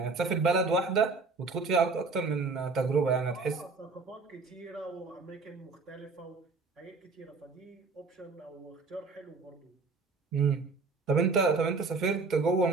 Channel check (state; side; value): quieter; left; 4.0 dB